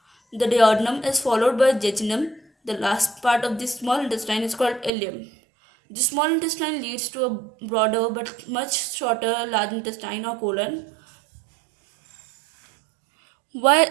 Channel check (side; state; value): left; drops out; at 4.9 s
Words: The duodenum is followed by jejunum. The last part of the small intestine is called ileum. The small intestine leads to a broader but much shorter large intestine or colon. Why